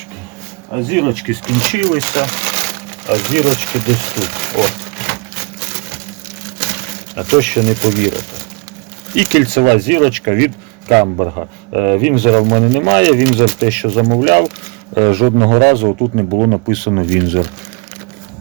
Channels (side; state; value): left; quieter; 30.9 dB